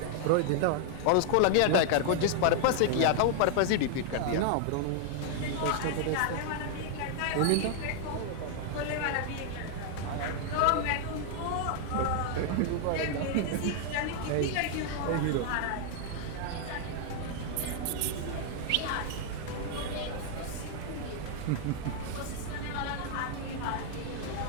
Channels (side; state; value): both; different; correlation 0.00